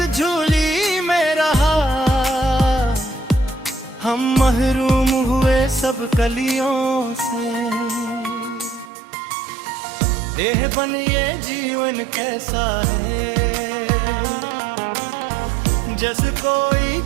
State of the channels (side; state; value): left; drops out; at 8.9 s